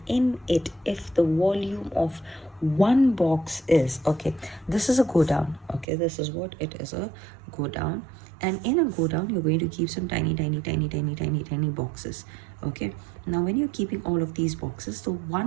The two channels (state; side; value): drops out; left; at 5.9 s